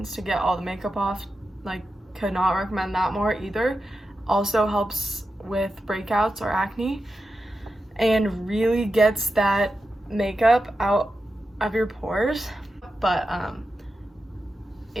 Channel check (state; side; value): normal; both; correlation 0.90